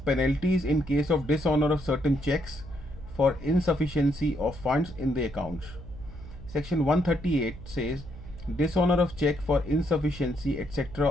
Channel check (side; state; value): right; noise; hum, 14 dB below the sound